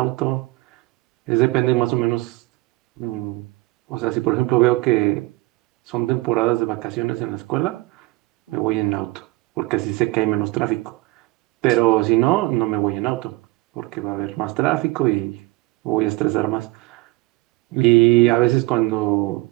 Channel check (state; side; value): quieter; left; 21.0 dB